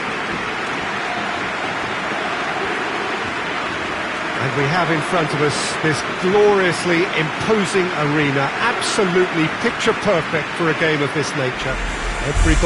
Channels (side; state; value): both; identical; correlation 1.00